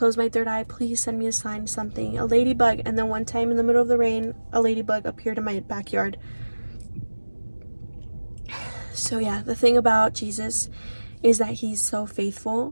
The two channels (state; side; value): inverted; both; correlation -1.00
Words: my third eye? Please send me a sign, something, a ladybug. And then one time in the middle of the rain, a ladybug appeared in my backyard. So yeah, the thing about Jesus is that he's so